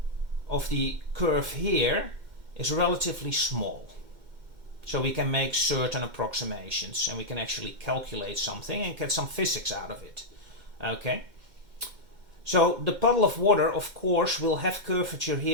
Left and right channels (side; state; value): left; late; 2.1 ms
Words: of the curve here is relatively small. So we can make certain approximations and we can actually calculate something and get some physics out of it. Okay? So the puddle of water, of course, will have curvature